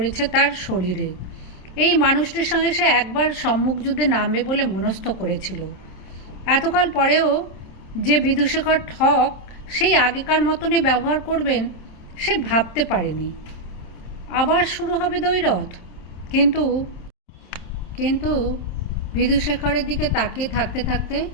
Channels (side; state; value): right; late; 27 ms